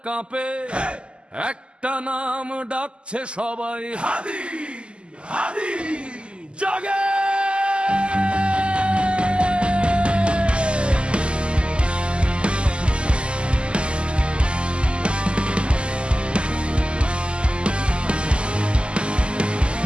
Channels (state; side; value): late; left; 0.052 ms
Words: কাঁপে, একটা নাম ডাকছে সবাই, হাদি হাদি জাগে।